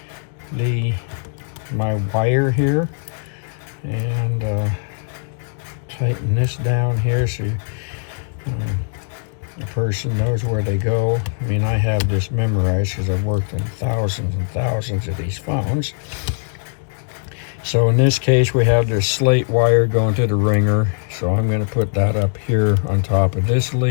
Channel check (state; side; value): silent; right; digital silence